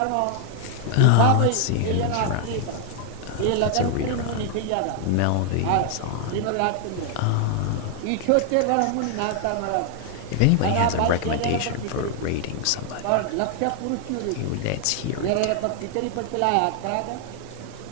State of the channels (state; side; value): different; both; correlation 0.00